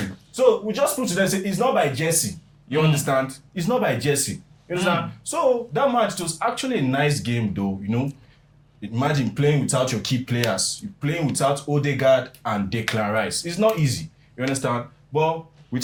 So we just put to them say it's not by Jesse. You understand? It's not by Jesse. You understand? So that match was actually a nice game though. Imagine playing without your key players. You're playing without Odegaard and Declan Rice. It's not easy. You understand? But we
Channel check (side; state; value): both; identical; correlation 1.00